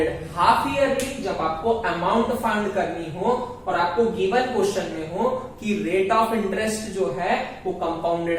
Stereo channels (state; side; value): identical; both; correlation 1.00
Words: half yearly, जब आपको अमाउंट फाइंड करनी हो और आपको गिवन क्वेश्चन में हो कि रेट ऑफ इंटरेस्ट जो है वो